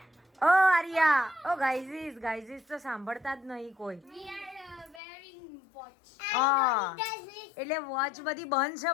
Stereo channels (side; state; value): right; drops out; at 5.0 s